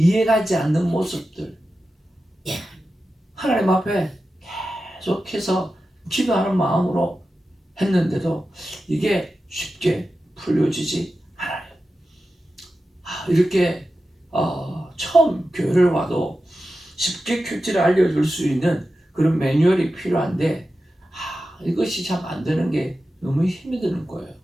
않는 모습들 하나님 앞에 계속해서 기도하는 마음으로 했는데도 이게 쉽게 풀려지지 않아요. 이렇게 처음 교회를 와도 쉽게 큐티를 알려줄 수 있는 그런 매뉴얼이 필요한데 이것이 참 안 되는 게 너무 힘이 드는 거예요.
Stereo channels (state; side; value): normal; both; correlation 0.92